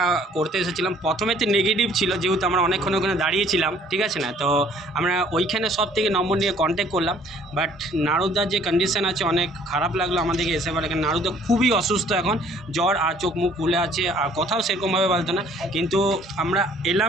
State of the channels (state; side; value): normal; both; correlation 0.58